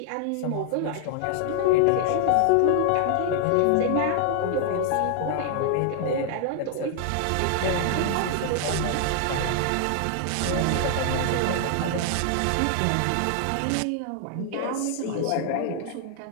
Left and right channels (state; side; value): different; both; correlation 0.00